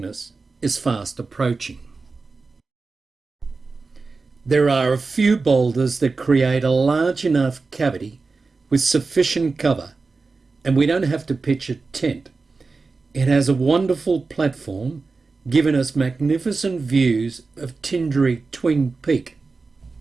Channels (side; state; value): left; quieter; 4.1 dB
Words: is fast approaching. There are a few boulders that create a large enough cavity with sufficient cover, and we don't have to pitch a tent. It has a wonderful platform, giving us magnificent views of Tinderry Peak.